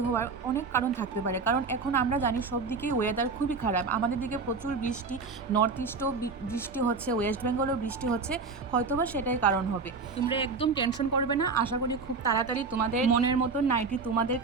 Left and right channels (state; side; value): quieter; left; 4.5 dB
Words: হওয়ার অনেক কারণ থাকতে পারে, কারণ এখন আমরা জানি সব দিকেই ওয়েদার খুবই খারাপ। আমাদের দিকে প্রচুর বৃষ্টি, নর্থ ইস্টও বৃষ্টি হচ্ছে, ওয়েস্ট বেঙ্গলও বৃষ্টি হচ্ছে, হয়তোবা সেটাই কারণ হবে। তোমরা একদম টেনশন করবে না, আশা করি খুব তাড়াতাড়ি তোমাদের মনের মতন নাইটি তোমাদের